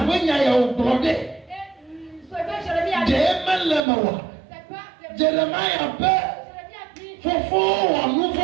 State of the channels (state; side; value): drops out; left; at 3.8 s